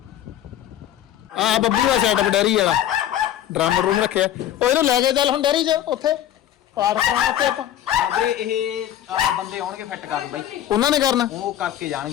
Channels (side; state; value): right; quieter; 11.7 dB